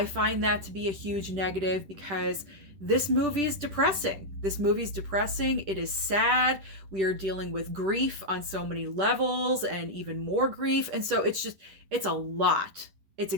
find that to be a huge negative because this movie is depressing. This movie is depressing. It is sad. We are dealing with grief on so many levels and even more grief. And so it's a lot. It's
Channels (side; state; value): left; late; 10 ms